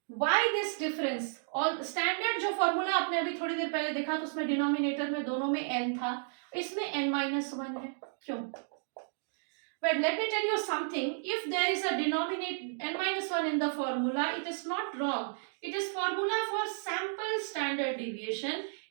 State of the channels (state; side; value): silent; left; digital silence